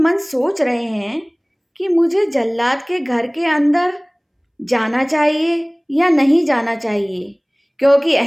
सोच रहे हैं कि मुझे जल्लाद के घर के अंदर जाना चाहिए या नहीं जाना चाहिए, क्योंकि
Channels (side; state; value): both; identical; correlation 1.00